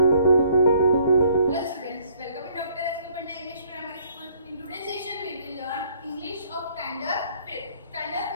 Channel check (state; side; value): inverted; both; correlation -0.62